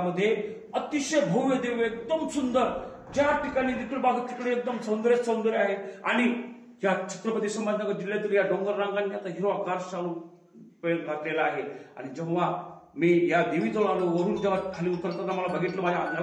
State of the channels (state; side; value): identical; both; correlation 1.00